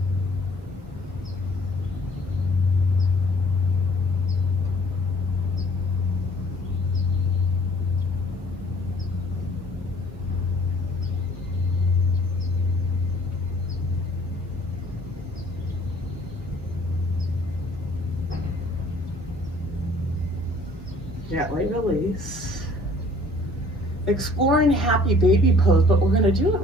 Gently release. Exploring happy baby pose, but we're going to do it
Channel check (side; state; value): both; normal; correlation 0.56